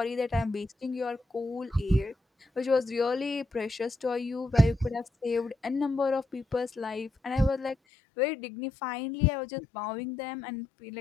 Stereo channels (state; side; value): drops out; right; at 7.8 s